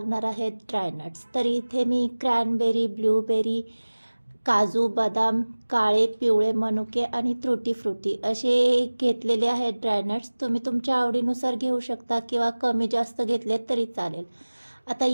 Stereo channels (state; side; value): inverted; both; correlation -1.00